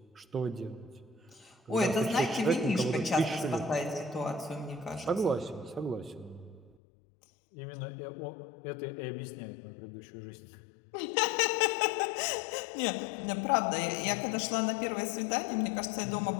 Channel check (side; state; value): right; drops out; at 6.8 s